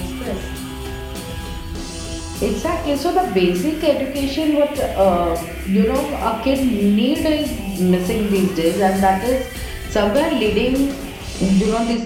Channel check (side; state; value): both; identical; correlation 1.00